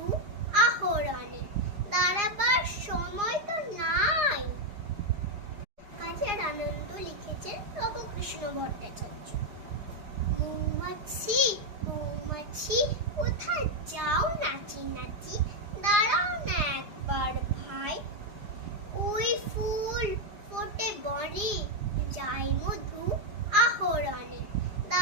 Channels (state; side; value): late; left; 4.9 ms